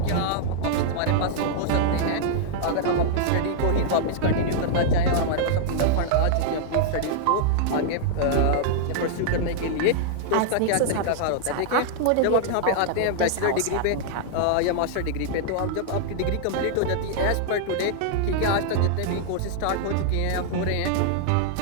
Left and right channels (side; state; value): both; different; correlation -0.01